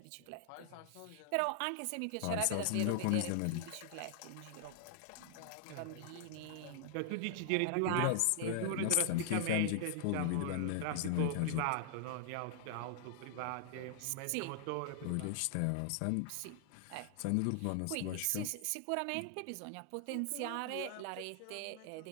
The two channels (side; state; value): both; different; correlation 0.00